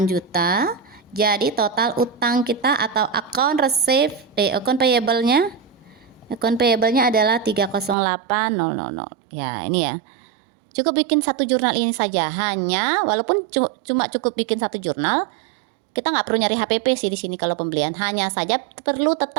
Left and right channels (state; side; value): drops out; left; at 8.0 s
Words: juta. Jadi total utang kita atau account account payable-nya adalah 308.000. Ya, ini ya. Cukup bikin satu jurnal ini saja. Hanya walaupun cuma cukup bikin satu jurnal, kita nggak perlu nyari HPP sih di sini kalau pembelian. Hanya saja perlu